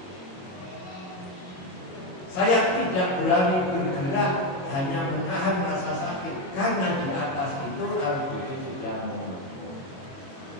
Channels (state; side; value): late; right; 22 ms